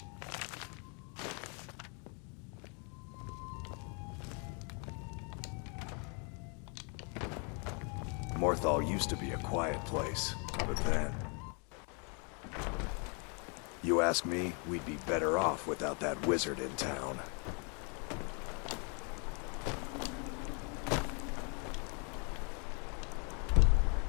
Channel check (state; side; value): quieter; right; 36.8 dB